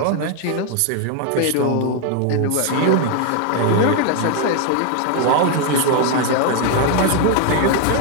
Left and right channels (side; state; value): both; different; correlation 0.00